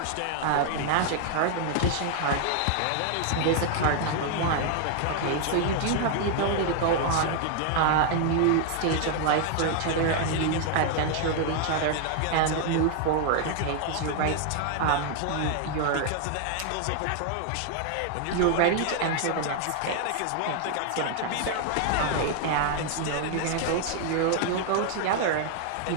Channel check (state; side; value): different; both; correlation 0.00